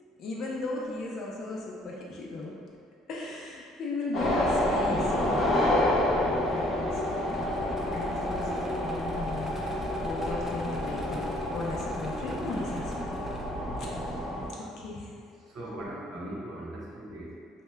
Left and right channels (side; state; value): both; normal; correlation 0.61